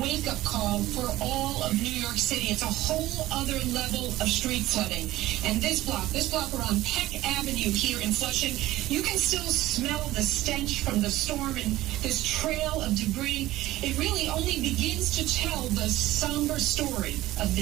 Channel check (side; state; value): left; quieter; 16.3 dB